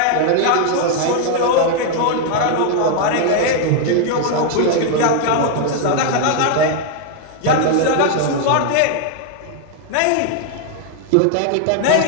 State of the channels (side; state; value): both; different; correlation 0.00